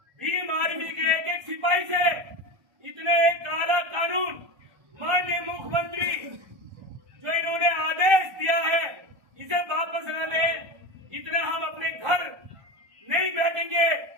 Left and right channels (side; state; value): left; late; 1.1 ms